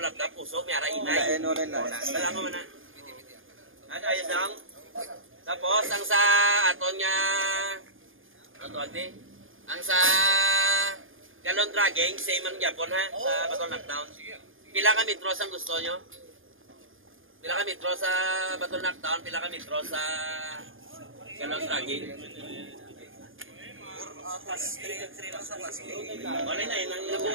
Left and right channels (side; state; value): left; late; 0.59 ms